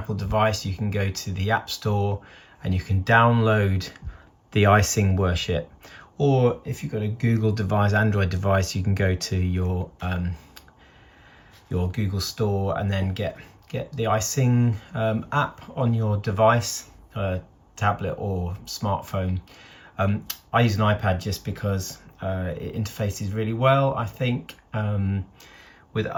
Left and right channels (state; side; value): identical; both; correlation 1.00